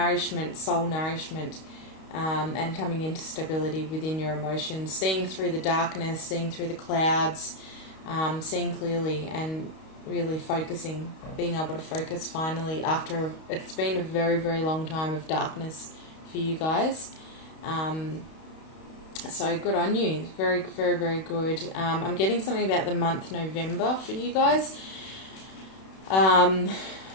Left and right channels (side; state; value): right; late; 31 ms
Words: soul nourishment, and coming into stability within your emotions, seeing through the darkness, seeing through the clouds, seeing clearly, and really focusing, being able to focus finally after it's been a very, very long time of darkness for you guys. So good on you. Very, very, very good. I'm getting something about the month November for you guys.